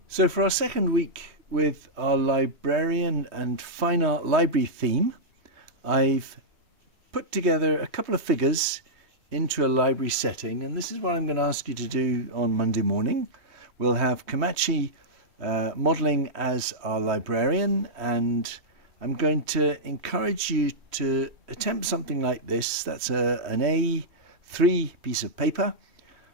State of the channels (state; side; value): late; left; 3.2 ms